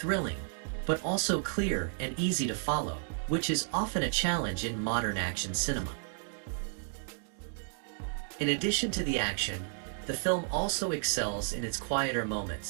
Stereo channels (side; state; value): left; silent; digital silence